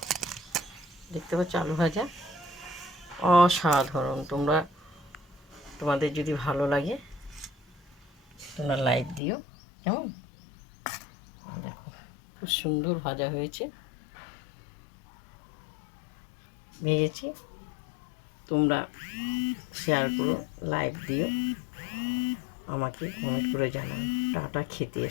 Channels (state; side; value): drops out; right; at 9.2 s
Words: দেখতে পাচ্ছ? আলু ভাজা অসাধারণ। তোমাদের যদি ভালো লাগে তোমরা লাইক দিও। কেমন? দেখো, খুব সুন্দর ভাজা হয়েছে, ভেজেছি। তোমরা শেয়ার করো, লাইক দিও, আমাকে কমেন্ট করে জানাও। টাটা। খেতে